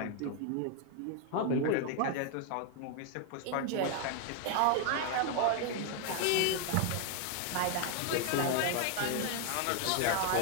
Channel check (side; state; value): both; different; correlation 0.01